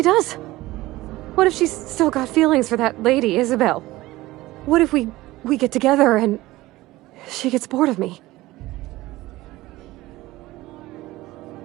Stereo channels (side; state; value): left; quieter; 18.1 dB